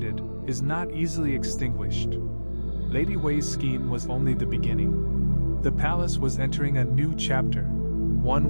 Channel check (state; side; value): inverted; both; correlation -1.00